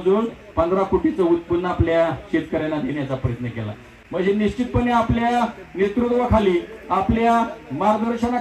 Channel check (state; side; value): identical; both; correlation 1.00